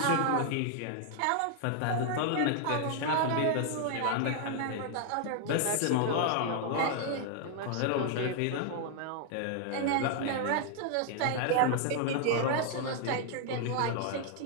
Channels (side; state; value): both; different; correlation 0.00